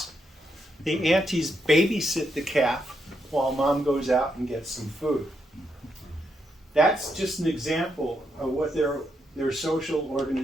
The aunties babysit the calf while mom goes out and gets some food. That's just an example of what their social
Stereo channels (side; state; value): both; normal; correlation 0.80